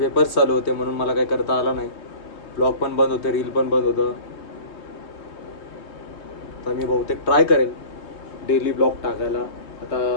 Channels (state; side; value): late; right; 3.2 ms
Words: चालू होते म्हणून मला काही करता आला नाही. ब्लॉग पण बंद होते, रील पण बंद होतं. तर मी बहुतेक ट्राय करेल डेली ब्लॉग टाकायला. आता